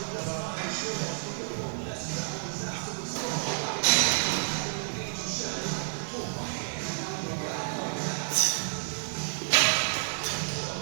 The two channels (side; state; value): left; silent; digital silence